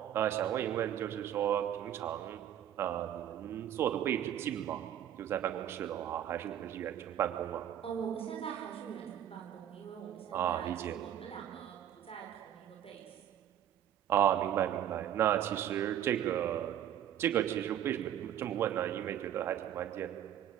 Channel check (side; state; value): left; quieter; 10.7 dB